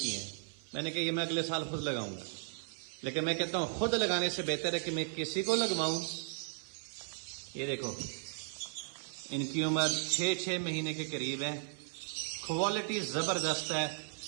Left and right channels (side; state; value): left; silent; 54 dB below the other